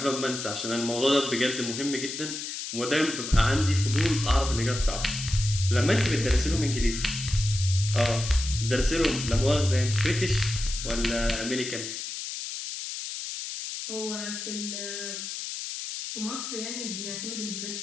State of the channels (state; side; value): noise; left; hiss, 6 dB below the sound